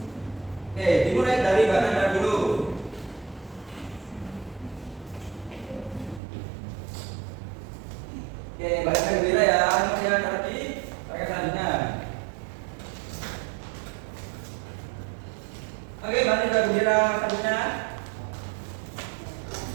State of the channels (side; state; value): left; drops out; at 6.2 s